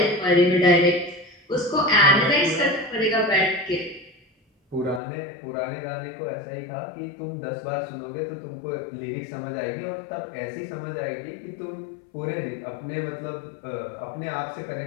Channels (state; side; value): drops out; right; at 5.0 s